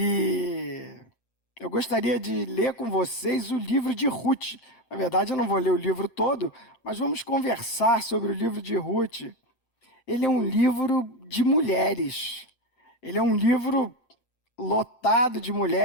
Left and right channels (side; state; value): right; late; 8.7 ms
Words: eu gostaria de ler com vocês o livro de Ruth. Na verdade, eu não vou ler o livro todo, mas vamos conversar sobre o livro de Ruth. Ele é um livro de mulheres. Ele é um livro lotado de